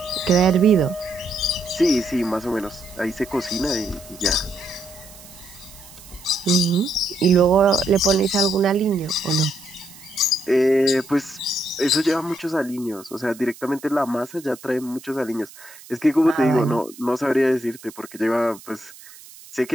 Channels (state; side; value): noise; right; hiss, 20 dB below the sound